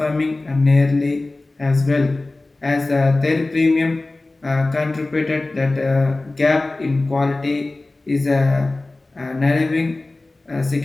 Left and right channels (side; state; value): right; quieter; 3.0 dB